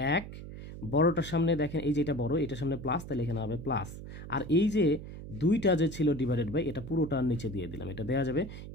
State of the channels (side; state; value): right; noise; hum, 11 dB below the sound